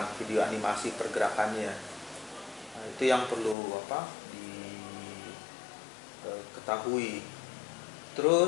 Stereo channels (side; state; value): right; drops out; at 3.6 s